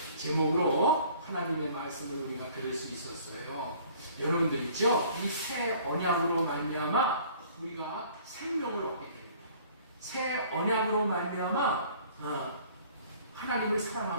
제목으로 하나님의 말씀을 우리가 들을 수 있었어요. 여러분들 있죠? 이 새 언약으로 말미암아 우리가 생명을 얻게 됩니다. 새 언약으로 말미암아 하나님을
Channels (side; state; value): both; inverted; correlation -0.53